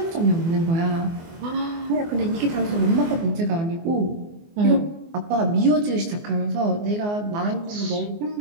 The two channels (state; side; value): late; left; 24 ms